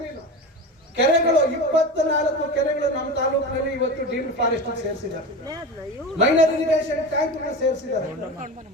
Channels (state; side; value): normal; both; correlation 0.27